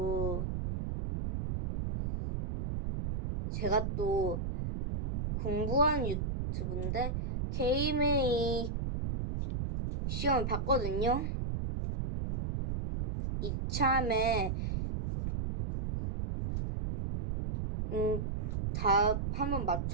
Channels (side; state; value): right; noise; rumble, 2 dB below the sound